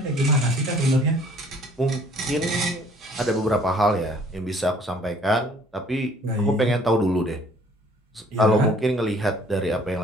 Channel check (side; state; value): both; normal; correlation 0.57